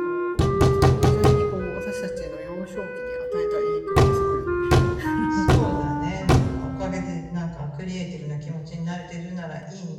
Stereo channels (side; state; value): both; identical; correlation 1.00